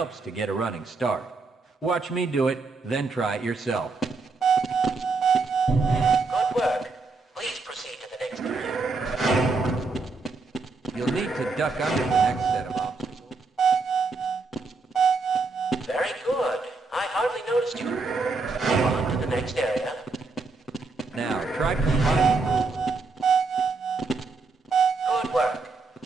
to get a running start. Watch me do it, then try it yourself. Good work. Please proceed to the next area. You'll need to duck under the next set of obstacles. Very good. I hardly noticed you. Move on to the next area. Now, try combining moves. Good work.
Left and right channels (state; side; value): quieter; left; 4.0 dB